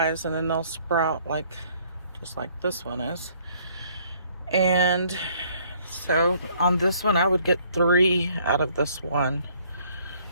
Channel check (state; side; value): inverted; both; correlation -0.63